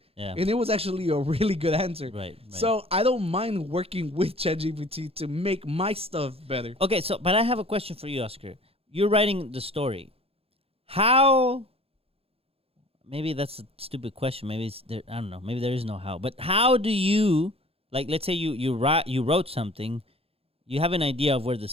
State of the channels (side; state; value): left; late; 0.28 ms